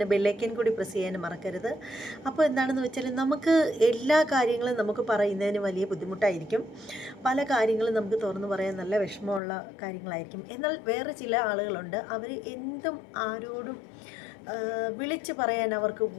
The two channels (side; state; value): right; drops out; at 9.4 s